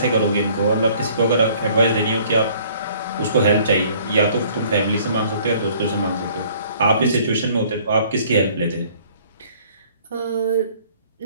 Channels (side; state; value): both; inverted; correlation -0.56